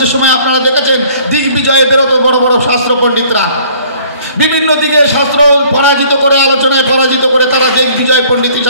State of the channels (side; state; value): both; inverted; correlation -0.55